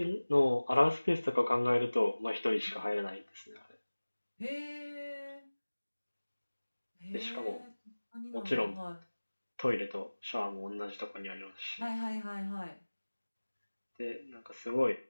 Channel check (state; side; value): inverted; both; correlation -1.00